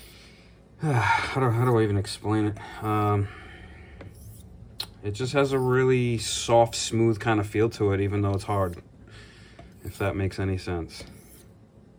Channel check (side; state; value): both; identical; correlation 1.00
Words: how do I even explain it? it just has a really soft, smooth kind of feel to it, even though it's hard, if that makes any sense.